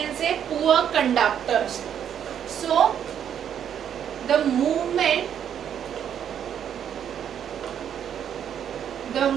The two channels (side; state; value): left; quieter; 9.0 dB